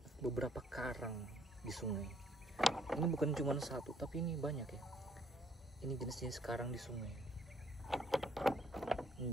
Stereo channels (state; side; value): normal; both; correlation 0.65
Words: beberapa karang di sungai. Ini bukan cuma satu, tapi ini banyak ya. Ini jenis-jenis karang di sungai. Ini